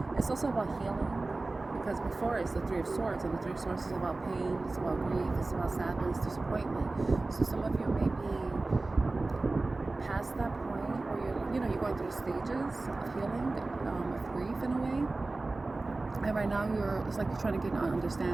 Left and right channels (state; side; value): quieter; left; 3.3 dB